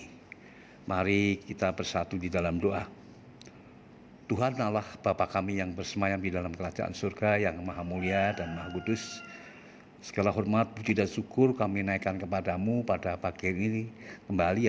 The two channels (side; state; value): both; identical; correlation 1.00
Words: Mari kita bersatu di dalam doa. Tuhan Allah Bapa kami yang bersemayam di dalam kerajaan surga yang maha mulia dan maha kudus, segala hormat, puji dan syukur kami naikkan kepadamu pada pagi ini